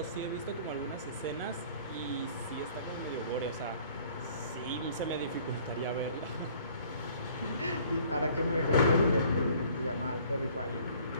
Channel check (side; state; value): both; inverted; correlation -0.55